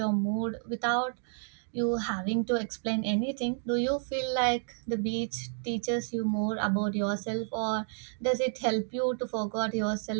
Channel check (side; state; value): left; silent; 57 dB below the other